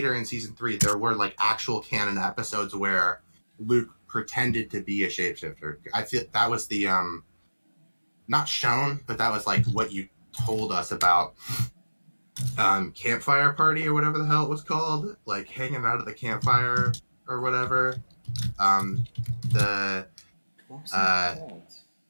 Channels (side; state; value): both; inverted; correlation -1.00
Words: in season 3, there were like actual canon episodes where Luke pretended to be a shapeshifter. I feel that was the not shown, but that was like what you told us about campfire party or whatever the hell it was called, like hanging out at the campfire or whatever. The What was that called?